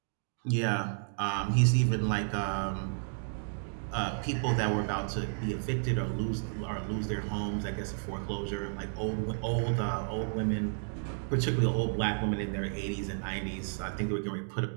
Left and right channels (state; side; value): silent; left; digital silence